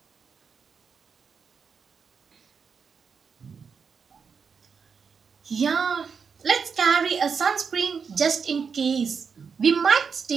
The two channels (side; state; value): left; quieter; 5.9 dB